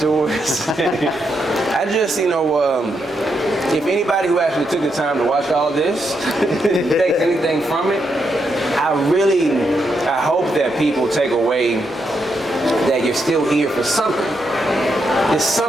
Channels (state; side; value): normal; both; correlation 0.81